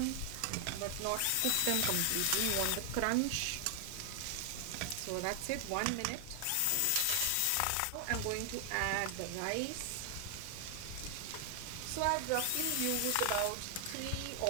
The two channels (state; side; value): different; both; correlation 0.00